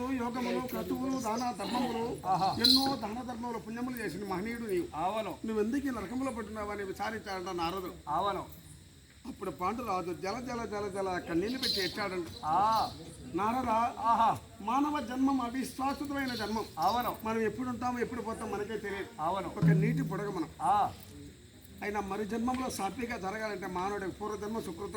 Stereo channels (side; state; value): both; identical; correlation 1.00